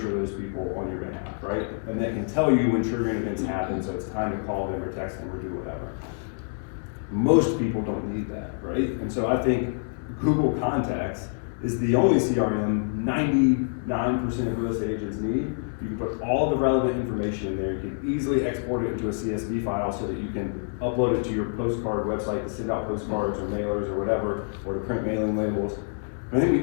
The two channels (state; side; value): silent; right; 60 dB below the other